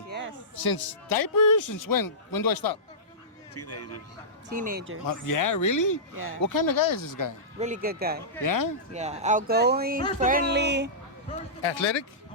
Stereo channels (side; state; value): both; normal; correlation -0.18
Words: Yes. Since diapers? Since when? When do I stop? Teenagers. Yeah, really? Yeah. What kind of guy is this guy? Really good guy. Yeah? Yeah. Outgoing, friendly. Athletic?